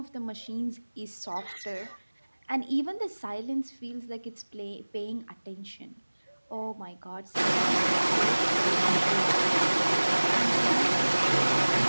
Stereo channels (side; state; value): both; inverted; correlation -1.00